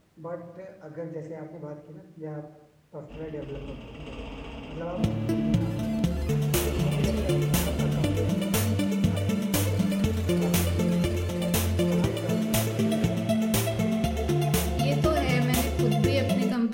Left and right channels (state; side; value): identical; both; correlation 1.00